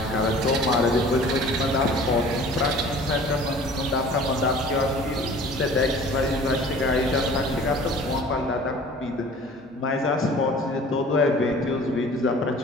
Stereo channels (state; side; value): normal; both; correlation 0.46